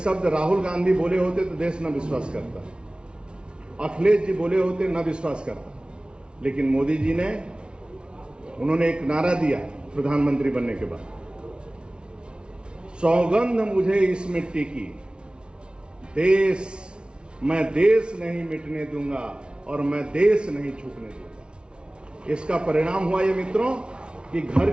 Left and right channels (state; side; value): late; left; 0.056 ms